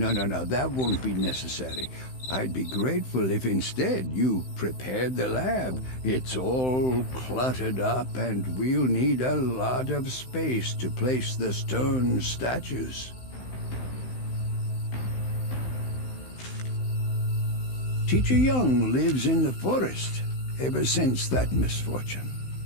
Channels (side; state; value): right; late; 16 ms